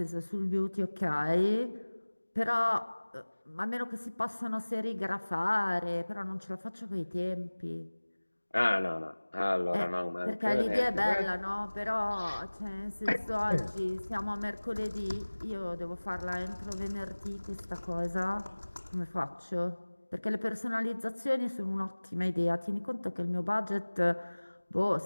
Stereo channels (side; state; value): both; inverted; correlation -1.00